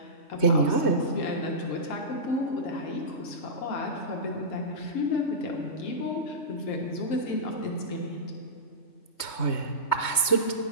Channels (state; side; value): late; right; 3.2 ms